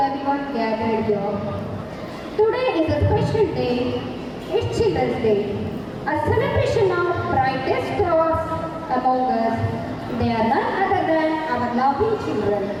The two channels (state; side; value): identical; both; correlation 1.00